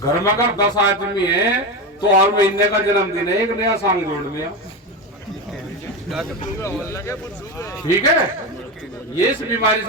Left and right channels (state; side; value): normal; both; correlation 0.18